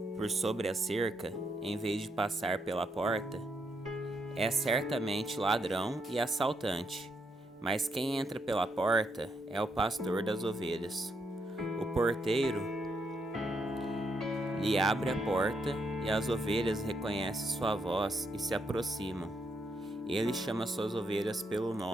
por sobre a cerca, em vez de passar pela porta, é certamente ladrão e assaltante. Mas quem entra pela porta é o pastor das ovelhas. O porteiro lhe abre a porta e as ovelhas reconhecem sua voz e se aproximam. Ele chama suas ovelhas pelo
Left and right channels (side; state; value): both; normal; correlation 0.78